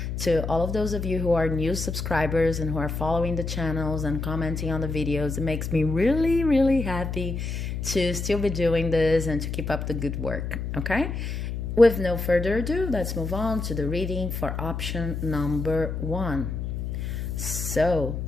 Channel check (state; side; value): noise; left; hum, 4 dB below the sound